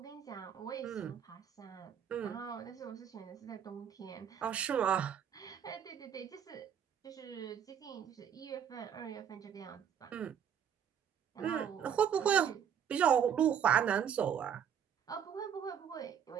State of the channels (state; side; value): quieter; left; 8.4 dB